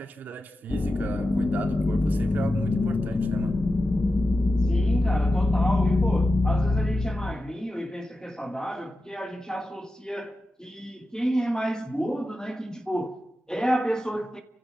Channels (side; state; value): both; normal; correlation 0.92